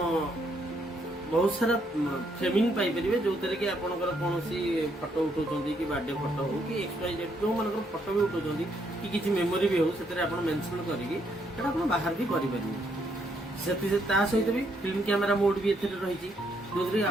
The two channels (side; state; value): both; normal; correlation 0.73